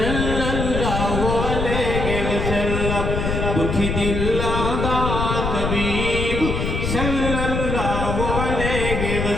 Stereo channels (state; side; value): noise; left; rumble, 1 dB below the sound